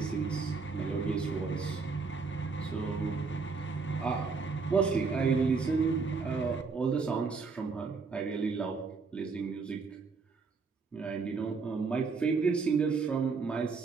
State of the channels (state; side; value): quieter; left; 4.7 dB